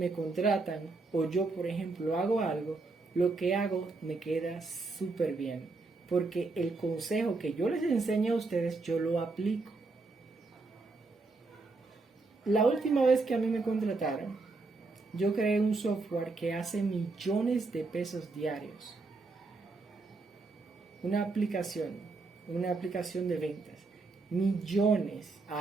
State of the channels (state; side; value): quieter; left; 3.7 dB